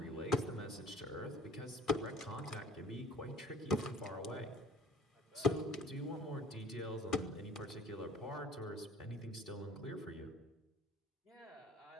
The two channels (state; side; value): normal; both; correlation 0.50